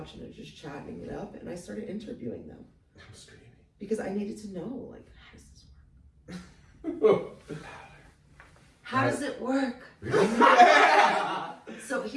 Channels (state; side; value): identical; both; correlation 1.00